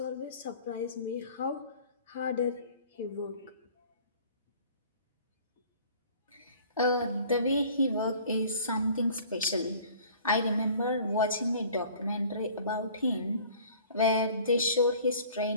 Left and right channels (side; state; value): both; inverted; correlation -0.50